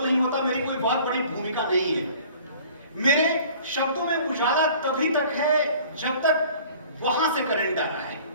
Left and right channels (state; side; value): inverted; both; correlation -0.49